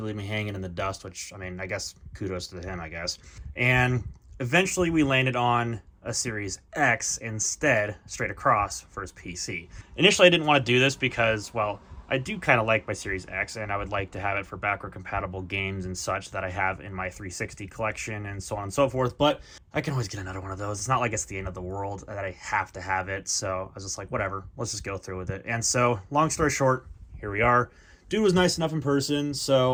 leave me hanging in the dust, which, I mean, I guess kudos to him, I guess. And eventually we landed on a Series X instead, straight across for his PC. Initially, I didn't want to do this because, well, I do kind of like my Series X, and I would like to have it for backward-compatible games and such that I have in my 360 collection and so on and so forth, but I can always get another one of those. It's not like it's the end of the world that I have to have it, so I was just like, whatever, let's just go through with it. And so, long story short, here we are. Dude was nice enough in person,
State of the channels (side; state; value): both; identical; correlation 1.00